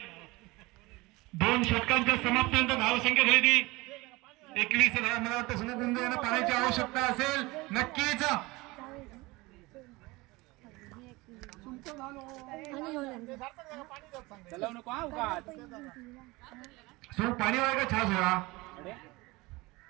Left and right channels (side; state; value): left; quieter; 22.4 dB